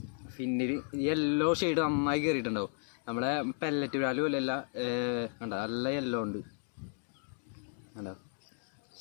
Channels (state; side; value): silent; right; 55 dB below the other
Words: ഫിന്നിൽ യെല്ലോ ഷെയ്ഡ് നന്നായി കയറിയിട്ടുണ്ടാവും. നമ്മളെ പെല്ലറ്റ് ബ്രാലും അല്ലല്ല, കണ്ടോ നല്ല യെല്ലോ ഉണ്ട്, കണ്ടോ